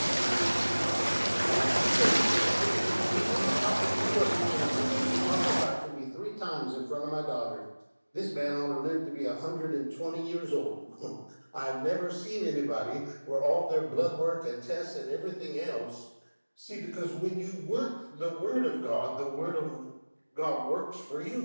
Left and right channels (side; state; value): both; inverted; correlation -1.00